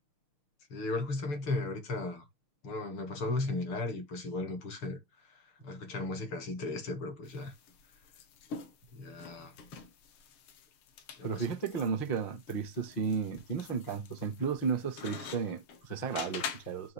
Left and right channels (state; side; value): late; right; 6.6 ms